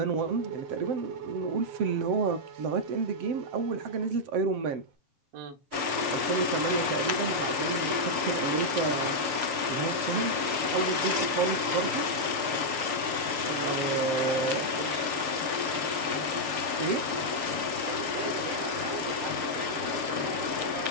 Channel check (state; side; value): late; left; 6.8 ms